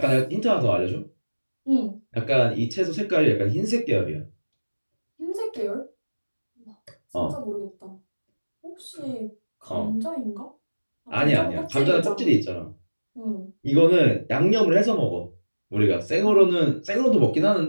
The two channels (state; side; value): inverted; both; correlation -1.00